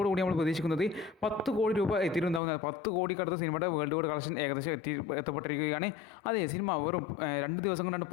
കൂടി നമ്മൾ പ്രതീക്ഷിക്കുന്നത് 10 കോടി രൂപ എത്തിയിട്ടുണ്ടാകുന്നത്. 10 കോടിക്കടുത്ത് സിനിമയുടെ വേൾഡ് വൈഡ് കളക്ഷൻ ഏകദേശം എത്തപ്പെട്ടിരിക്കുകയാണ്. അതെ, സിനിമ വെറും 2 ദിവസം കൊണ്ടാണ്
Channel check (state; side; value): drops out; right; at 2.4 s